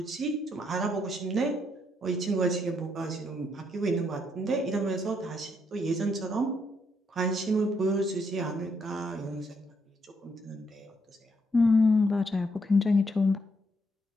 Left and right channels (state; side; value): normal; both; correlation 0.75